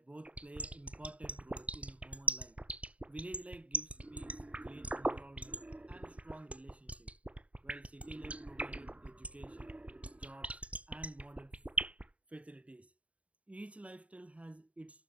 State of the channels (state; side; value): late; left; 0.066 ms